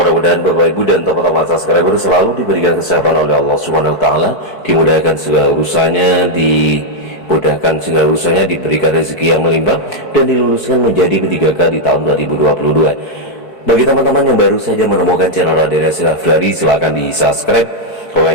Bapak Ibu dan teman-teman subscriber selalu diberikan kesehatan oleh Allah Subhanahu wa taala, dimudahkan segala urusannya, dimudahkan segala urusannya, diberikan rezeki yang melimpah dan diluluskan menjadi P3K di tahun 2022. Bagi teman-teman yang baru saja menemukan channel Raden Nasil Afriyadi, silahkan di subscribe,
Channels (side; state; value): right; late; 4.6 ms